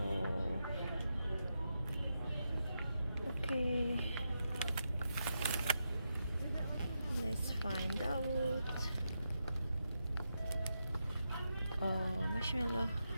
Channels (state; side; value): inverted; both; correlation -0.85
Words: okay. Let's find out. Oh, marshmallow.